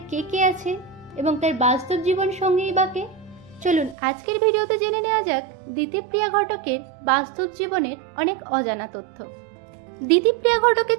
কে কে আছে এবং তার বাস্তব জীবন সঙ্গী বা কে? চলুন আজকের ভিডিওতে জেনে নেওয়া যাক দিতিপ্রিয়া ঘটকের বাস্তব জীবনের অনেক অজানা তথ্য। দিতিপ্রিয়া ঘটকের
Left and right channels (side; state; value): left; drops out; at 4.0 s